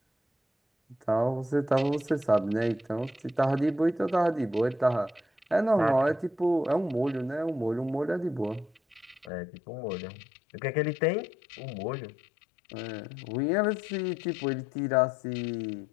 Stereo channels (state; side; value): drops out; right; at 9.3 s